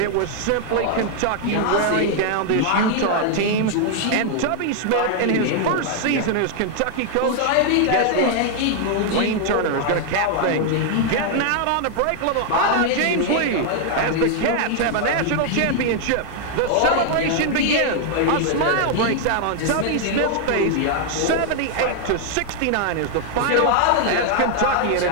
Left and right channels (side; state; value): both; different; correlation 0.00